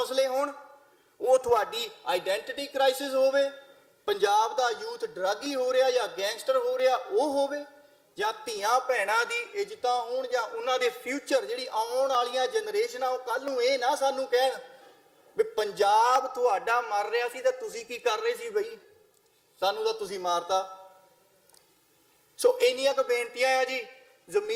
ਹੋਣ, ਉਹ ਤੁਹਾਡੀ ਆਈਡੈਂਟੀਟੀ ਕ੍ਰਾਈਸਿਸ ਹੋਵੇ, ਪੰਜਾਬ ਦਾ ਯੂਥ ਡਰੱਗੀ ਹੋ ਰਿਹਾ ਜਾਂ ਗੈਂਗਸਟਰ ਹੋ ਰਿਹਾ ਉਹ ਹੋਵੇ, ਜਾਂ ਧੀਆਂ ਭੈਣਾਂ ਦੀ ਇੱਜ਼ਤਾਂ ਹੋਣ, ਜਾਂ ਉਹਨਾਂ ਦੇ ਫਿਊਚਰ ਜਿਹੜੀ ਆਉਣ ਵਾਲੀਆਂ ਜਨਰੇਸ਼ਨਾਂ ਉਹ ਕੱਲ ਨੂੰ ਇਹ ਨਾ ਸਾਨੂੰ ਕਹਿਣ ਵੀ ਪੰਜਾਬ ਤੁਹਾਡਾ ਮਰ ਰਿਹਾ ਸੀ ਤੇ ਤੁਸੀਂ ਕੀ ਕਰ ਰਹੇ ਸੀ ਬਈ, ਸਾਨੂੰ ਤਾਂ ਤੁਸੀਂ ਮਾਰਤਾ। ਸੋ ਇੰਨੀਆਂ ਕੁ ਬੇਨਤੀਆਂ ਆ ਜੀ,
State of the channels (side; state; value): both; identical; correlation 1.00